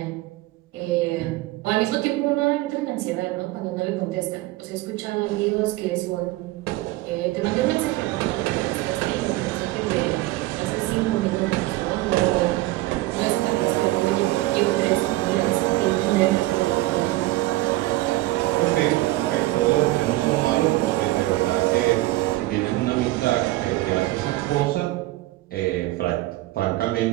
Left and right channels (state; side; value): quieter; left; 18.1 dB